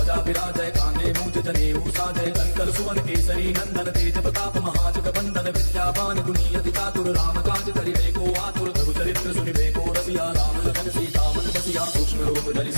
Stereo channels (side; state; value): both; inverted; correlation -1.00